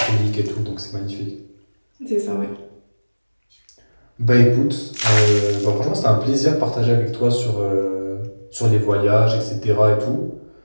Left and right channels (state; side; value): inverted; both; correlation -1.00